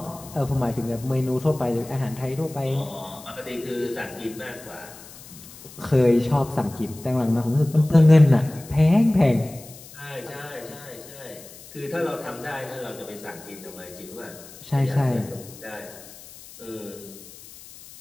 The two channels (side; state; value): left; noise; hiss, 18 dB below the sound